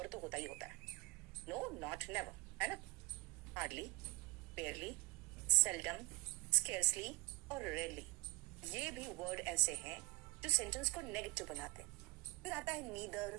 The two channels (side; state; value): left; quieter; 21.2 dB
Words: तो होता ही होता है, नो नॉट नेवर, है ना। हार्डली, बेयरली, सेल्डम, स्केर्सली और रेयरली, ये भी वर्ड ऐसे हैं जो सेंटेंस को नेगेटिव बनाते हैं। फिर आता है